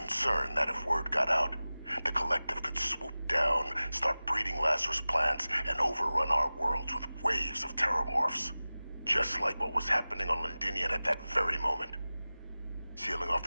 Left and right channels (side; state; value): both; inverted; correlation -0.97